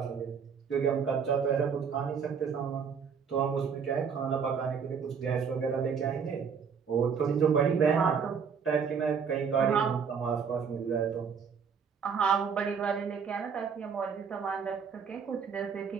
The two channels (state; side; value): quieter; left; 6.5 dB